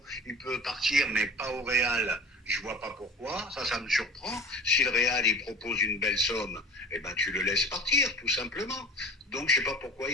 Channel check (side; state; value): both; normal; correlation 0.39